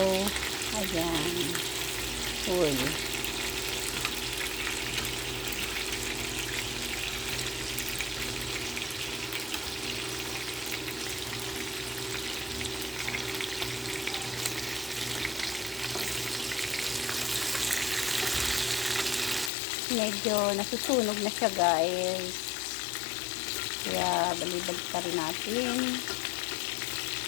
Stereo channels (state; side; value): drops out; right; at 19.5 s